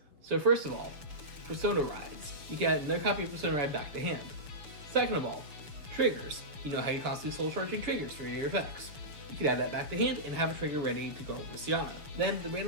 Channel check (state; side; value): late; left; 6.8 ms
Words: So first of all, Persona Rides. You can add another copy of Persona Ride back to hand. Second of all, Triggers. You know how you're constantly soul charging triggers for your effects. You can add that back to hand and have a trigger ready to go over Sssiana. Then the